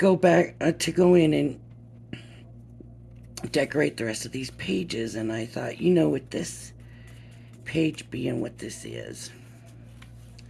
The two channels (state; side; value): identical; both; correlation 1.00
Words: in and decorate the rest of these pages, and I thought, with this page being what this is,